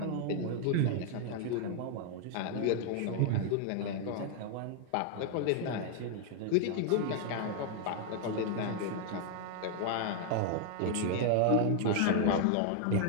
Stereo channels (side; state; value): both; different; correlation 0.00